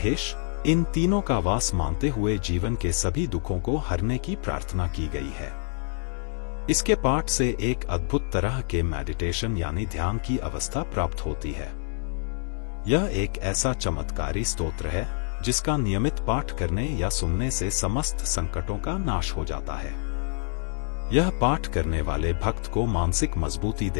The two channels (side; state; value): right; silent; 60 dB below the other